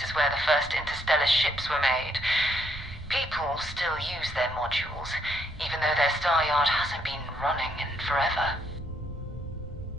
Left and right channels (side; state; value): both; normal; correlation 0.72